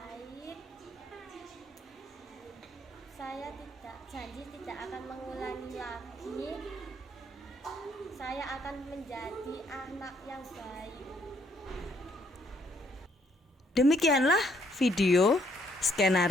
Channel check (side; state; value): both; normal; correlation 0.69